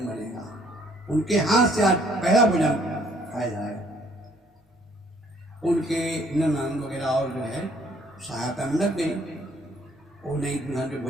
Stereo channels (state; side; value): normal; both; correlation 0.63